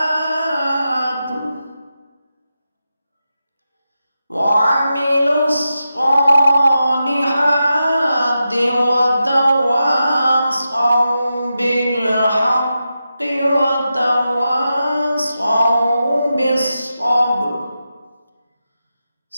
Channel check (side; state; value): both; inverted; correlation -0.89